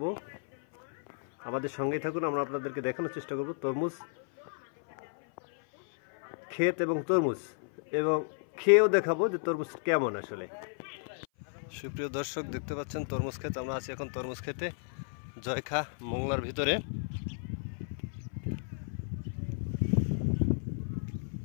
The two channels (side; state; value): right; silent; 56 dB below the other